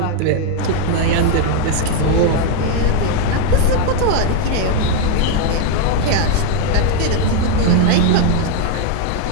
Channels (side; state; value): both; different; correlation 0.01